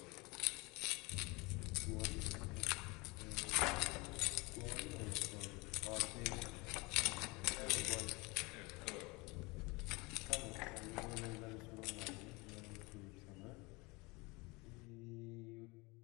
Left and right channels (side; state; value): right; quieter; 25.5 dB